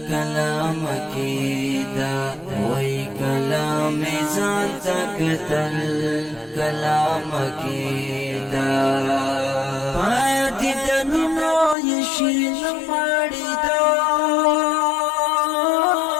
کلام کېدا وای کلام ځان ته کتل کلام کېدا پاتې د نومو یې شین ماړي دو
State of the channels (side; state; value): right; drops out; at 11.8 s